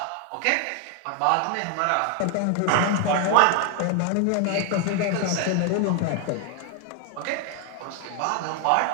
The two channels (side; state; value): both; different; correlation 0.00